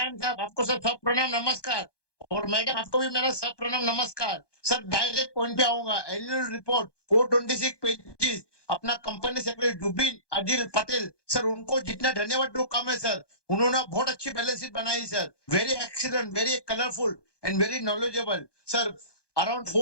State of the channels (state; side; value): late; right; 1.2 ms